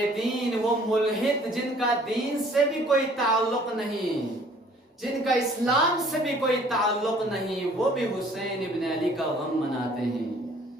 دین، وہ ملحد جن کا دین سے بھی کوئی تعلق نہیں، جن کا اسلام سے بھی کوئی تعلق نہیں، وہ بھی حسین ابن علی کا غم مناتے ہیں۔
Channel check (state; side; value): normal; both; correlation 0.55